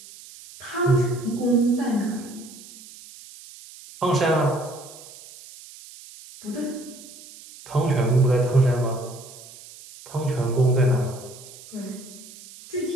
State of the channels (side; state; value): right; noise; hiss, 18 dB below the sound